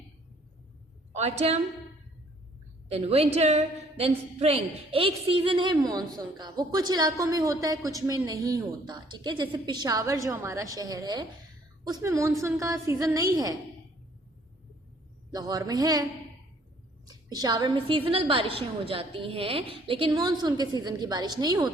autumn, then winter, then spring. एक सीजन है मॉनसून का, वो कुछ इलाकों में होता है, कुछ में नहीं होता, ठीक है। जैसे पेशावर जो हमारा शहर है उसमें मॉनसून का सीजन नहीं है, लाहौर में है। पेशावर में सीजनल बारिशें हो जाती हैं लेकिन मॉनसून के सीजन की बारिश नहीं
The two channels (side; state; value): both; normal; correlation 0.61